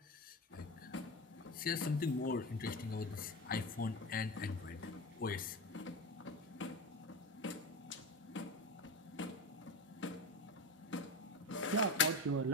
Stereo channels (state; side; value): normal; both; correlation 0.23